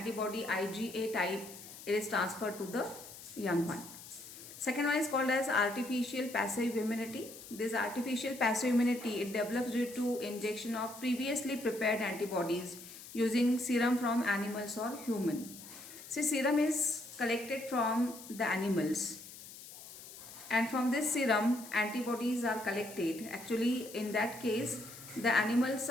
IgA type, it is transferred to the young one. Second one is called as artificial passive immunity. This artificial passive immunity, it develops due to injection of previously prepared antibodies using serum from animals or human. See, serum is collected from the animals, and from this serum antibodies are collected. Actually, in that case, the animals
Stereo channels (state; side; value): noise; left; hiss, 15 dB below the sound